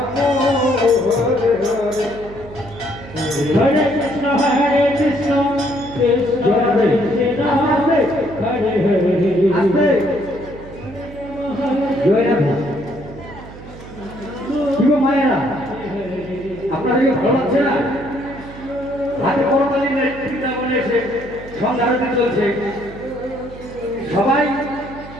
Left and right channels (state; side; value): noise; right; hum, 16 dB below the sound